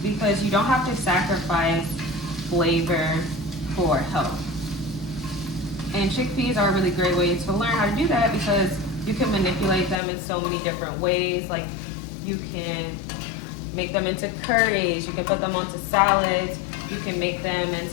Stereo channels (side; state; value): right; drops out; at 10.0 s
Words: because you don't have to sacrifice flavor for health. And chickpeas are a really great way to learn how to do that, because you can manipulate them in so many different ways. Like you can make them into curries, you can put them onto salads, you can make them